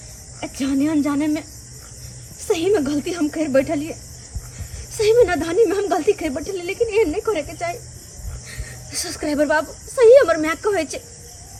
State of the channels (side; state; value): both; identical; correlation 1.00